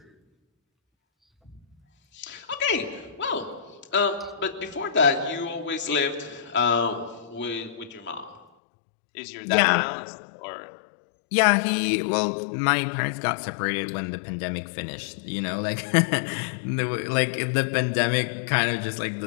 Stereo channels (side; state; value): right; drops out; at 8.5 s